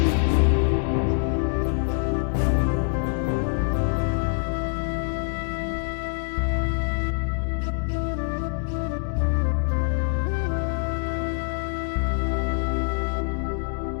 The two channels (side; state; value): right; silent; 62 dB below the other